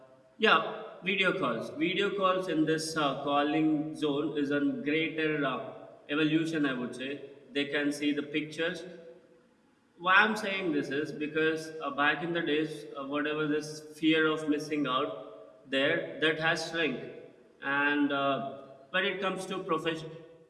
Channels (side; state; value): both; identical; correlation 1.00